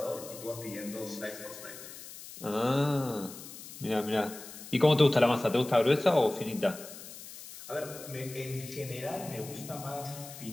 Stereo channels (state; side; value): noise; left; hiss, 14 dB below the sound